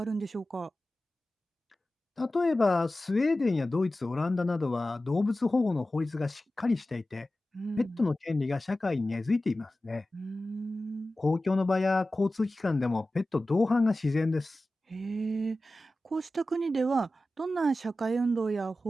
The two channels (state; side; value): normal; both; correlation 0.95